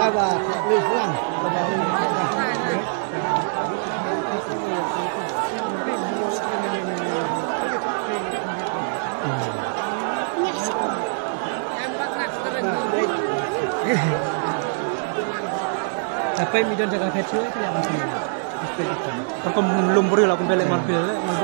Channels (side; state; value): left; silent; digital silence